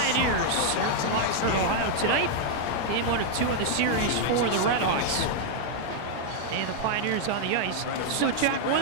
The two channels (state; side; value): different; both; correlation 0.00